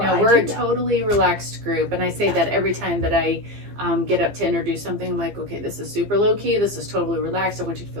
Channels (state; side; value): late; left; 15 ms